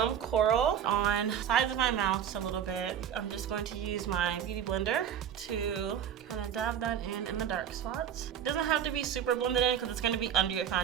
coral on the sides of my mouth just a little bit. I'm just going to use my beauty blender to kind of dab that in the dark spots. It doesn't have to be super blended in because it's going to be under your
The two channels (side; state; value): left; quieter; 9.1 dB